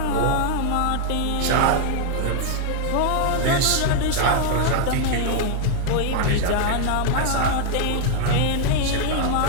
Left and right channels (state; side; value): different; both; correlation 0.00